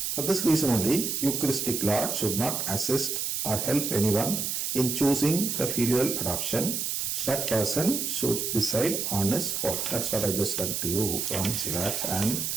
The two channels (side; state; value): right; noise; hiss, 1 dB below the sound